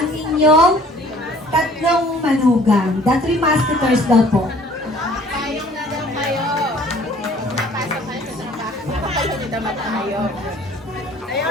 inyong tatlong manugang. The 3 musketeers daw po. Payong na daw kayo. Napasok kayo sa trabaho. Nakapagod na mata kayo. Ayaw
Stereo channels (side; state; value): both; normal; correlation 0.54